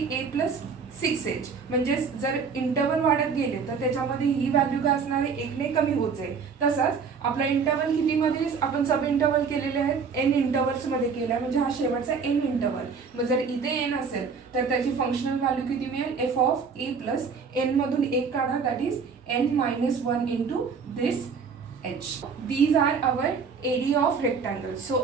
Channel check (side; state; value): left; quieter; 5.6 dB